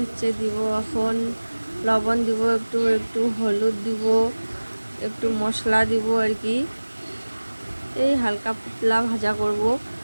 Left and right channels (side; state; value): both; inverted; correlation -1.00